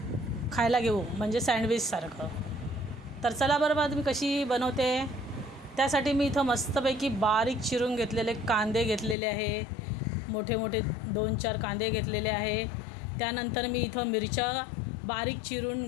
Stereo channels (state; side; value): drops out; right; at 9.2 s